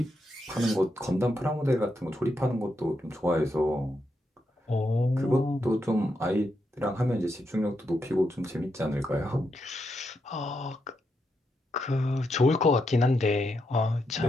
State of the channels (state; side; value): normal; both; correlation 0.82